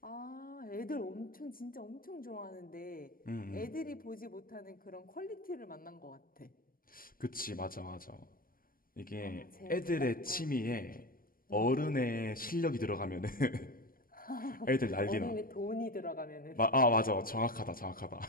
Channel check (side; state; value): right; late; 0.42 ms